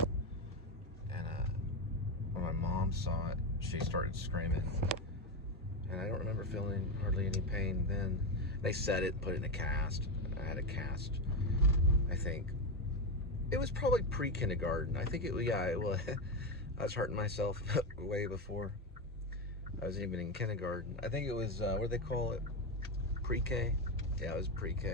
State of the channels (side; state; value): both; normal; correlation 0.12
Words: And when my mom saw it, she started screaming. And I don't remember feeling hardly any pain then. They set it and put it in a cast. I had a cast, I think. It was probably pre-kindergarten. I think it was, yeah, it was. I was hurting myself way before I was even in kindergarten. I think it was, what do they call it? Pre-K? Yeah, it was